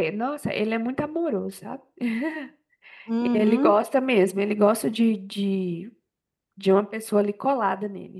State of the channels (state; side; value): identical; both; correlation 1.00